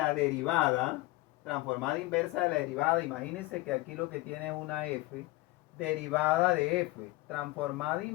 derivada, imagínense que aquí lo que tiene es una f, derivada de f, transformada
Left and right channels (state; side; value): quieter; right; 19.9 dB